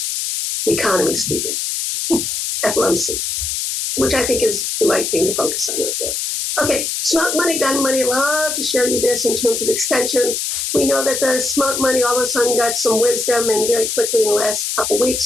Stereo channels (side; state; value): left; noise; hiss, 2 dB below the sound